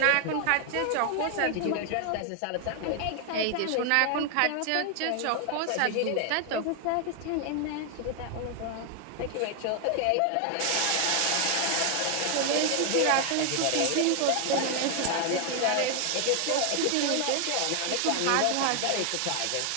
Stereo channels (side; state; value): both; different; correlation 0.00